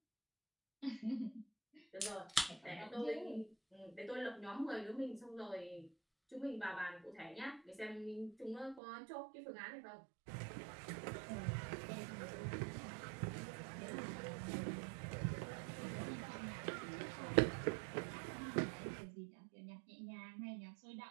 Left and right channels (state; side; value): drops out; left; at 8.8 s